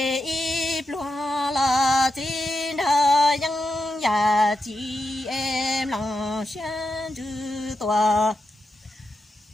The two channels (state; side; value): normal; both; correlation 0.87